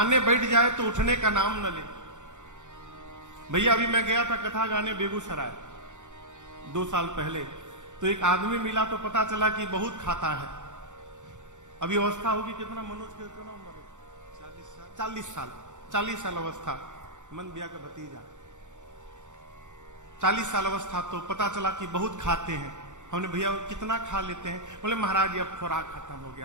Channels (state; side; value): late; left; 0.85 ms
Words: बैठ जाए तो उठने का नाम न ले। भैया अभी मैं गया था कथा गाने बेगूसराय 2 साल पहले, तो एक आदमी मिला तो पता चला कि बहुत खाता है। अभी अवस्था होगी कितना, मनोज के कितना उम्र है? 40 साल अवस्था। मन बिया का भतीजा 40 साल अवस्था। तो पता चला कि बहुत खाते हैं। हमने भैया कितना खा लेते हैं? बोले महाराज अब खुराक खत्म हो